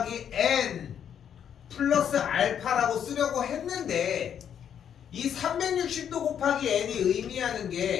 n 플러스 알파라고 쓰려고 했는데, 이 360도 곱하기 n이 의미하는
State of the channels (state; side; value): quieter; right; 8.8 dB